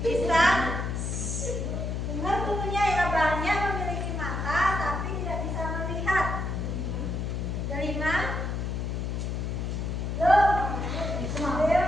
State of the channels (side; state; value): left; noise; hum, 2 dB below the sound